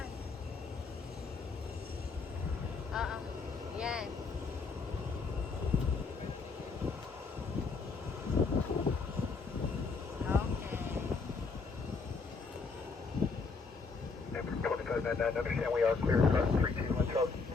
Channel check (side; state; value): right; quieter; 4.5 dB